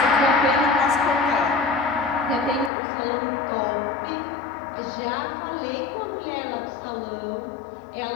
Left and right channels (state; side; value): drops out; right; at 2.7 s